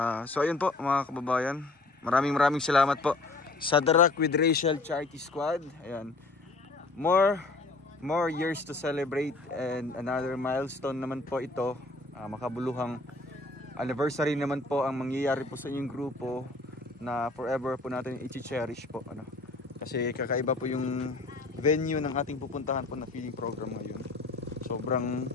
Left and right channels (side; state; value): right; quieter; 3.2 dB